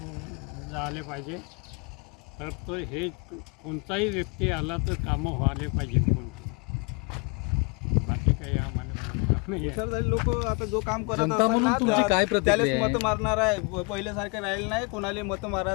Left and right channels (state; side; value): quieter; right; 31.8 dB